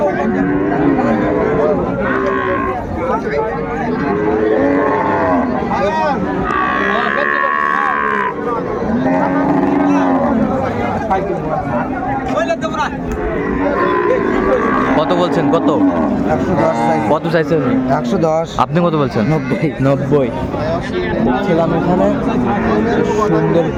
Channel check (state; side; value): identical; both; correlation 1.00